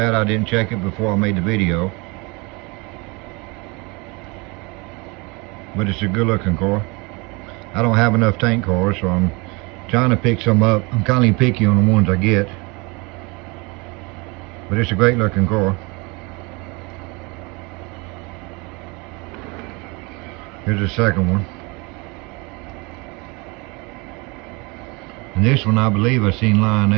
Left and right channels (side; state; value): left; quieter; 27.8 dB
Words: I didn't check it before I made the video. But it's a good looking car. I don't have enough tank cars, so I'm trying to pick some up. I'm kind of picky on the ones I get. But it's a great looking car. Here's the second one. And this one, I believe I seen